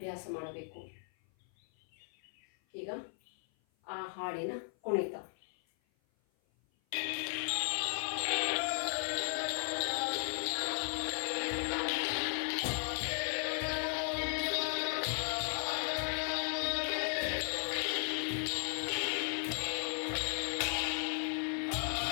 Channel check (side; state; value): right; silent; 54 dB below the other